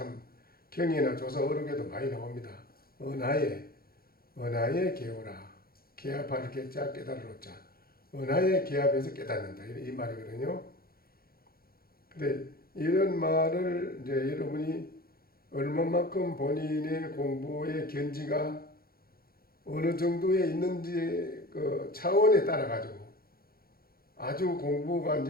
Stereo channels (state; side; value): late; right; 0.44 ms